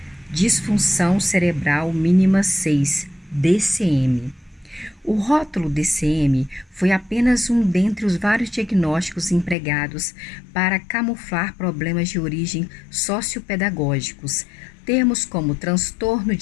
disfunção cerebral mínima 6, DCM. O rótulo DCM foi apenas um dentre os vários diagnósticos empregados para camuflar problemas de origem sociopedagógicos. Termos como transtorno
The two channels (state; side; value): drops out; right; at 9.6 s